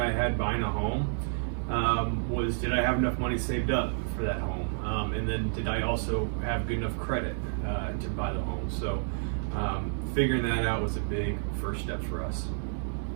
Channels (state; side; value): silent; left; digital silence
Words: I had buying a home was, did I have enough money saved up for that home? And then did I also have good enough credit to buy the home? So figuring that out was a big first step for us.